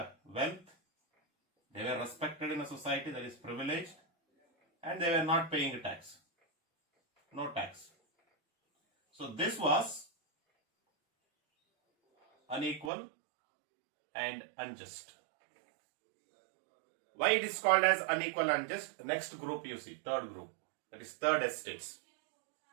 wealth, they were respected in a society, that is privileged, and they were not paying a tax. No tax. So this was unequal and unjust. Why it is called as unequal and unjust? Next group you see, third group, that is third estates.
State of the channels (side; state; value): left; drops out; at 12.9 s